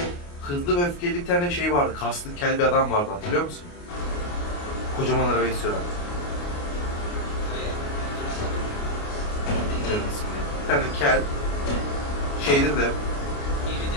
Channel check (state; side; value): late; right; 29 ms